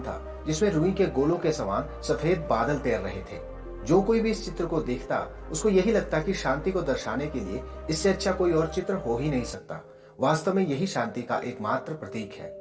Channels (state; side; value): identical; both; correlation 1.00